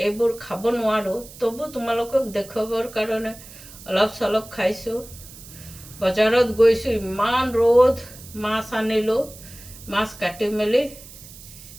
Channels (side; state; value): right; noise; hiss, 18 dB below the sound